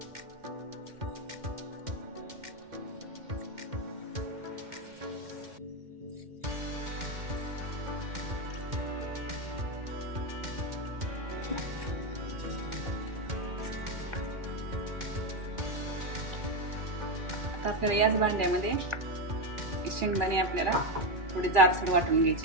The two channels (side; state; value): left; late; 2.4 ms